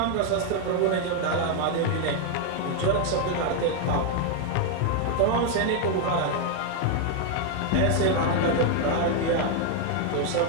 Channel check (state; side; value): different; both; correlation 0.01